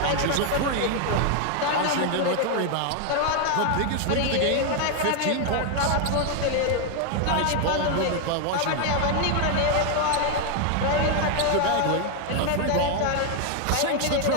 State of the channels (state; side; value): different; both; correlation 0.01